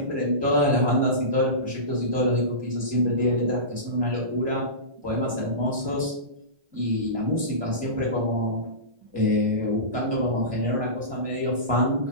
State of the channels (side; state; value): left; late; 1.2 ms